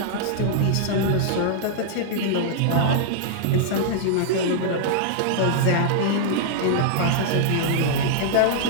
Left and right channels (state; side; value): different; both; correlation -0.01